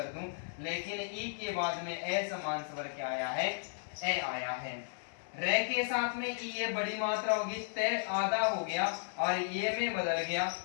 दूं, लेकिन ई के बाद में ए समान स्वर क्या आया है, ए आया है। रे के साथ में ई ये बड़ी मात्रा होगी, तय आधा हो गया और ये में बदल गया,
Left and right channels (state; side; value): silent; right; 55 dB below the other